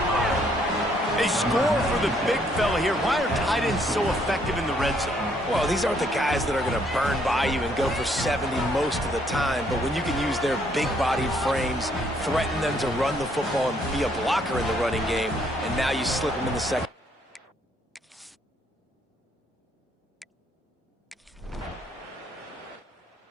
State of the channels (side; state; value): both; normal; correlation 0.68